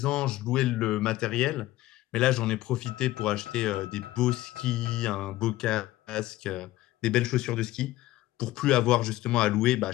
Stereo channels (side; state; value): right; quieter; 16.5 dB